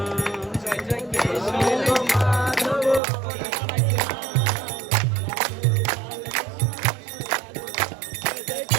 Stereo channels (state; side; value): drops out; left; at 3.0 s